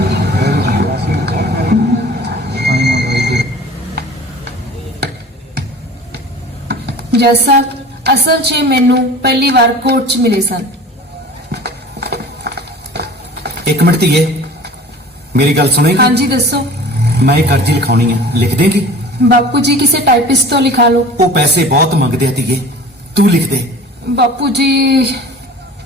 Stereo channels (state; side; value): normal; both; correlation 0.42